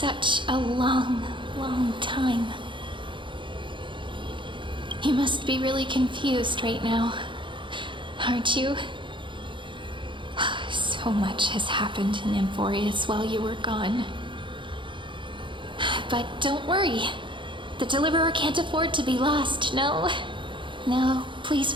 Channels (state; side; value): late; left; 0.24 ms